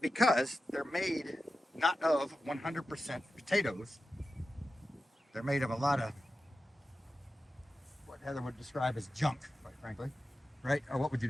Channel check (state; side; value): normal; both; correlation 0.92